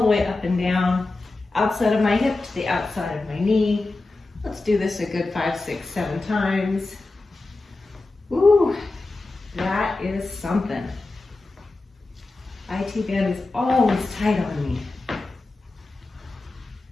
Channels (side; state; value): right; quieter; 3.2 dB